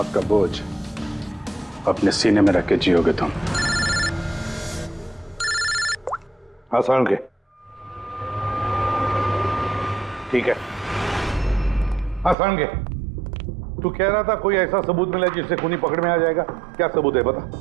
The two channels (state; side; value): drops out; left; at 12.4 s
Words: का बोझ अपने सीने में रख के जियोगे तुम। आसान के ठीक है। आसान के तू कह रहा था कोई ऐसा सबूत मिला जिससे खूनी पकड़ में आ जाएगा। क्या सबूत है बता?